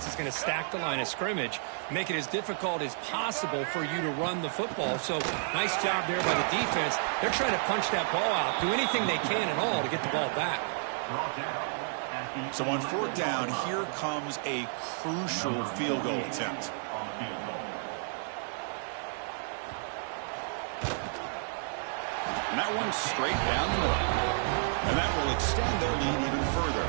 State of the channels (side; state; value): left; silent; digital silence